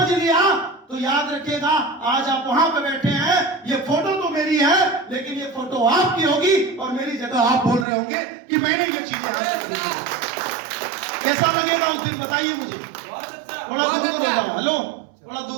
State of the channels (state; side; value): drops out; left; at 7.9 s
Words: लिया तो याद रखिएगा, आज आप वहां पे बैठे हैं, ये फोटो तो मेरी है, लेकिन ये फोटो आपकी होगी और मेरी जगह आप बोल रहे होंगे कि मैंने ये चीजें हासिल की। कैसा लगेगा उस दिन बताइए मुझे। बहुत अच्छा। थोड़ा दूर हो जाओ, हेलो, थोड़ा